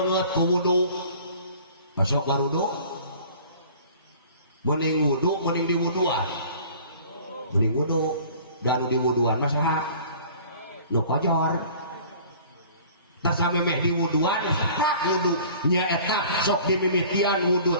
ku wudu. Masuk warudu. Mending wudu mending diwuduan. Mending wudu dan diwuduan mah saha? Nu kojor. Tasamemeh di wuduan tak wudu nyaeta sok dimimitian wudu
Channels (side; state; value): both; inverted; correlation -0.48